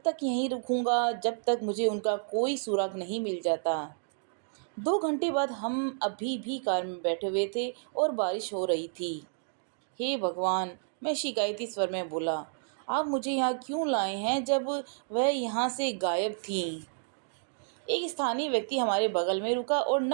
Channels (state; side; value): silent; left; digital silence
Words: तक यहीं रुकूंगा जब तक मुझे उनका कोई सुराग नहीं मिल जाता। 2 घंटे बाद हम अभी भी कार में बैठे हुए थे और बारिश हो रही थी। हे भगवान, मैं शिकायती स्वर में बोला, आप मुझे यहाँ क्यों लाए हैं जब वह यहाँ से गायब थीं? एक स्थानीय व्यक्ति हमारे बगल में रुका और